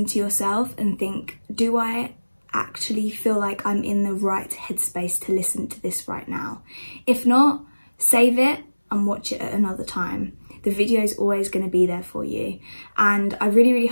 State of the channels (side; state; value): both; inverted; correlation -1.00